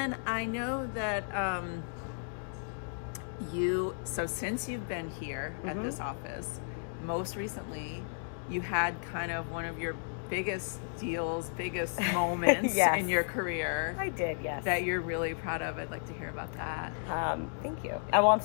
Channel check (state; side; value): silent; right; digital silence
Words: I know that since you've been here at this office, most recently you had kind of one of your biggest deals, biggest moments in your career. I did, yes. That you're really proud of. I'd like to hear about that. Thank you. Well, I'm